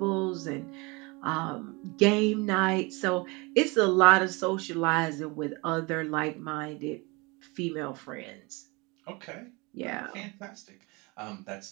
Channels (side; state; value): left; quieter; 26.9 dB